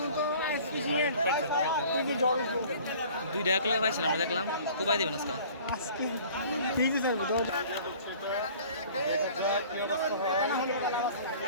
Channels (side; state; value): both; inverted; correlation -0.49